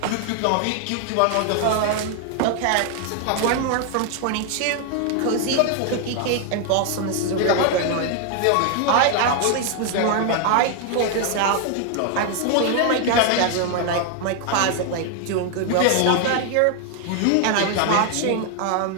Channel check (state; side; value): different; both; correlation 0.00